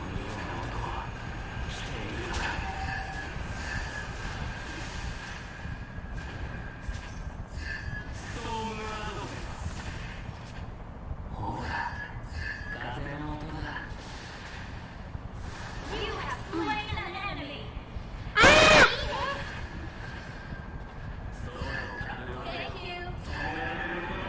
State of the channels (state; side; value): identical; both; correlation 1.00